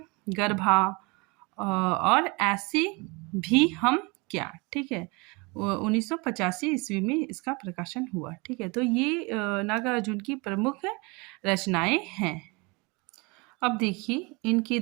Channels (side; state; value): left; quieter; 27.6 dB